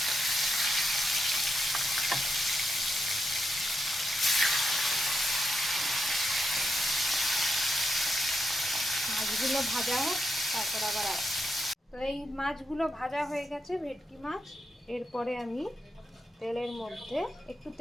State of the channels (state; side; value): normal; both; correlation 0.84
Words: মাছগুলো ভাজা হোক, তারপর আবার তো এই মাছগুলো ভাজা হয়ে গেছে, ভেটকি মাছ। এরপরে আমি তেলের মধ্যে একটু